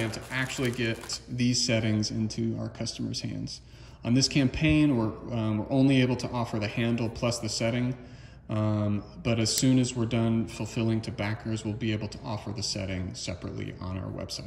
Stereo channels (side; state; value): both; identical; correlation 1.00